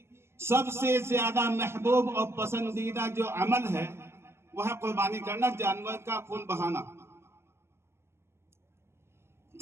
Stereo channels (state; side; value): late; left; 0.12 ms